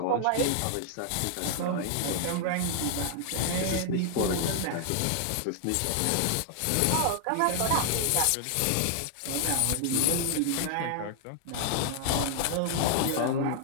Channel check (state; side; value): different; both; correlation 0.00